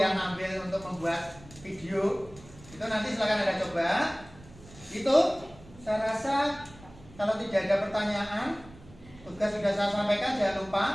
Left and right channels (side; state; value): right; noise; rumble, 21 dB below the sound